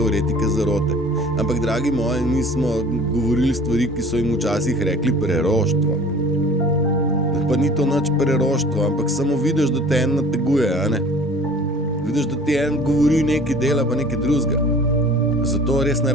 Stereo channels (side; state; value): both; normal; correlation 0.46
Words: zarote. Ampak, dragi moji, mi smo govorili stvari, ki so jim včasih rekli preroštvo. Pa ni to nič preroštvo, ampak samo vidiš, da te en nateguje, Vidiš, da ti en govori nekaj dela, pa nekaj drugega. Zato res ne